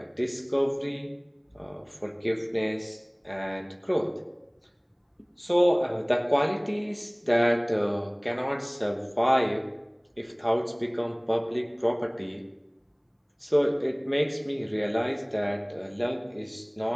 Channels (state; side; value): identical; both; correlation 1.00